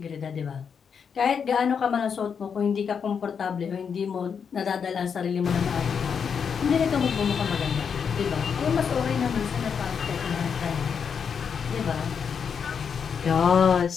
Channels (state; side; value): quieter; right; 6.7 dB